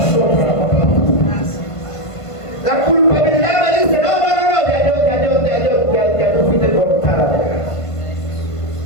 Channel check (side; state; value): right; late; 1.5 ms